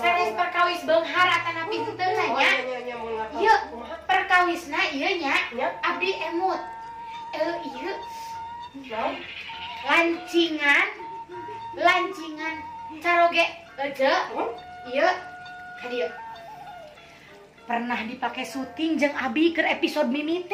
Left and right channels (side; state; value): both; identical; correlation 1.00